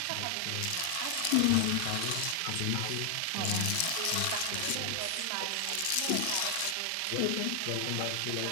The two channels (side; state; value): both; different; correlation 0.00